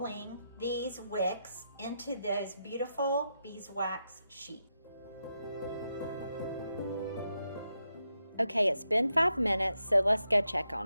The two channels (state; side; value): inverted; both; correlation -0.85